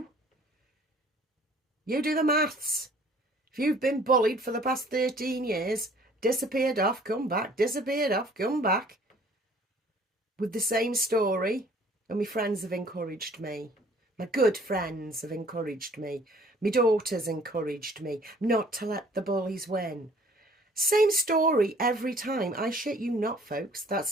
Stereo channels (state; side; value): normal; both; correlation 0.55